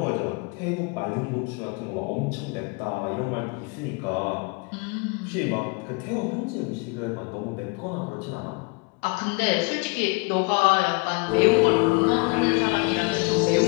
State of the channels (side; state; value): right; quieter; 30.1 dB